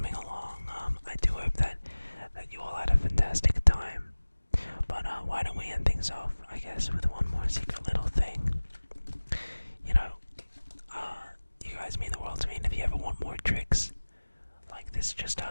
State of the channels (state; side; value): inverted; both; correlation -1.00